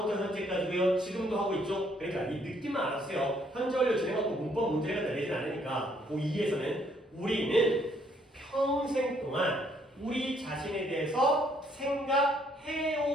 현재까지고요. 지금도 하고 있죠? 그러니까 이 느낌만 알았어요. 현재 완료 진행하고 문법 문제가 내리진 않으니까 고2에서는 우리는 평생 동안 우리 자신에 대해서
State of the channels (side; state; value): both; normal; correlation 0.67